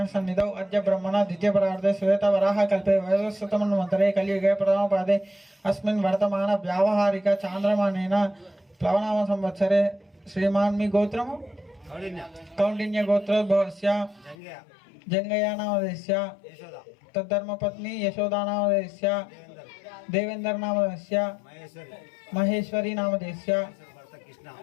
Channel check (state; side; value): drops out; right; at 14.4 s